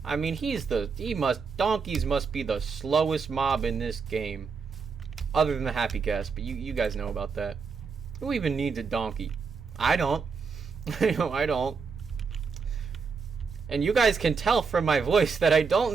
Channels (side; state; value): left; quieter; 5.3 dB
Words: I mean, donkeys must be the slowest mob in this game. Other than the happy cast, but you guys know about that. Who even needs a donkey? I don't. I don't. And you guys can tell from my voice that I don't